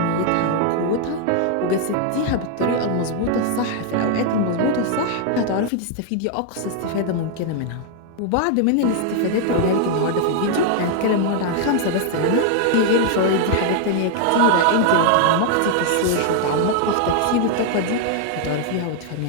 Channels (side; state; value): both; different; correlation 0.00